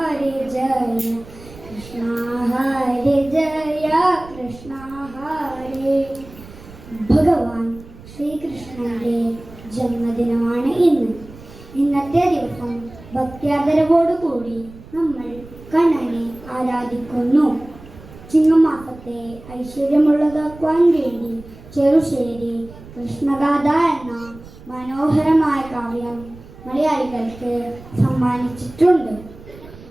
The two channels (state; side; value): noise; right; rumble, 19 dB below the sound